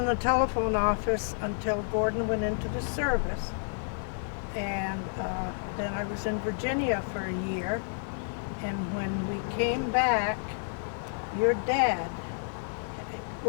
the telephone office until Gordon went into the service. And then I was in Virginia for a year. And when we came back, your dad,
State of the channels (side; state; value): right; silent; 57 dB below the other